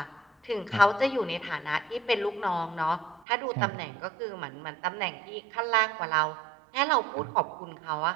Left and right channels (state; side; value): drops out; left; at 3.2 s